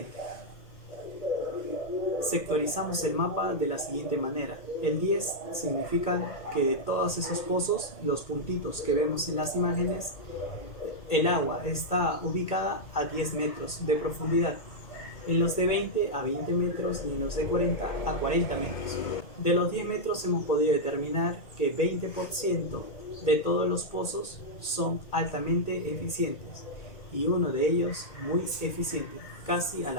Sectorizamos el mapa de la siguiente manera. El 10 significa que de todos esos pozos, los puntitos que vemos en las imágenes, el agua está ubicada a 10 metros de profundidad. En los de 20 a 20 metros y en los de 40 a 40 metros. De los 10 metros hemos podido determinar que 20% de todos los pozos son altamente eficientes y uno de ellos muy eficiente, casi a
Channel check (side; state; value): right; late; 2.3 ms